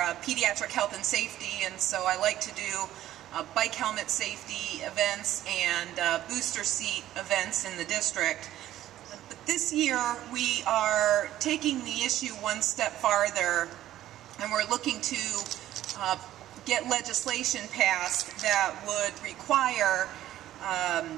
pediatric health and safety, and so I like to do bike helmet safety events and booster seat events in the district. But this year we are taking the issue one step farther, and we're looking to get legislation passed that would require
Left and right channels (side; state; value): left; quieter; 13.3 dB